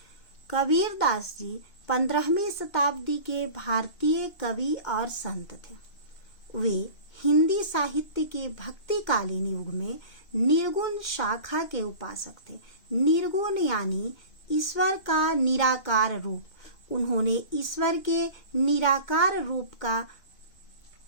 कबीर दास जी 15वीं शताब्दी के भारतीय कवि और संत थे। वे हिंदी साहित्य के भक्तिकालीन युग में निर्गुण शाखा के उपासक थे। निर्गुण यानी ईश्वर का निराकार रूप। उन्होंने ईश्वर के निराकार रूप का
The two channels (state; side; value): late; right; 2.2 ms